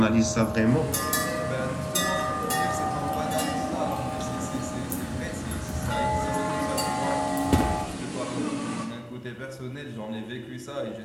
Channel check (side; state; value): both; identical; correlation 1.00